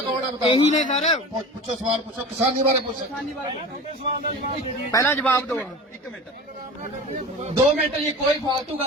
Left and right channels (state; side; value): normal; both; correlation 0.34